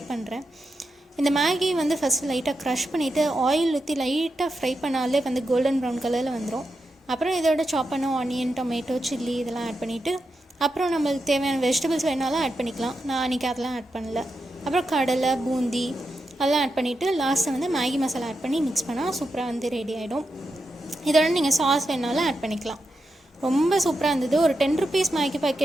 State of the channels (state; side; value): normal; both; correlation 0.87